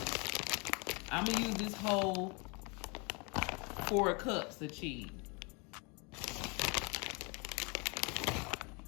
I'm gonna use this whole 4 cups of cheese.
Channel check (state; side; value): quieter; right; 31.7 dB